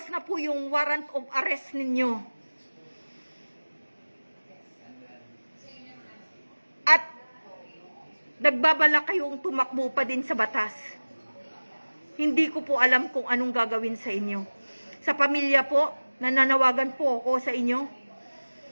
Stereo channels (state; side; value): inverted; both; correlation -1.00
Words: na po yung warrant of arrest ninyo at nagbabala kayong tumakbo pa din sa batas, hindi ko po alam kung anong gagawin sa inyo. Sa pamilya po, nananawagan po ako sa inyo.